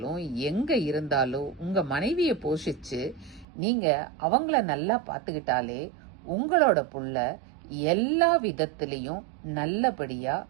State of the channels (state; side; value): drops out; left; at 3.5 s